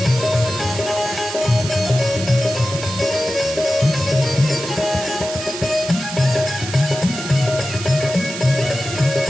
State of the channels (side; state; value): right; noise; hiss, 8 dB below the sound